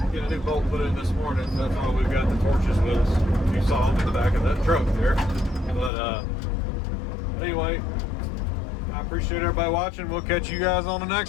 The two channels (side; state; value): right; drops out; at 5.9 s